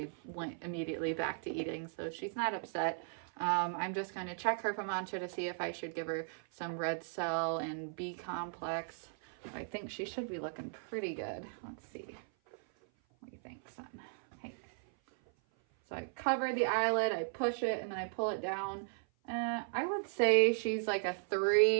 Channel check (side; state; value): left; silent; 53 dB below the other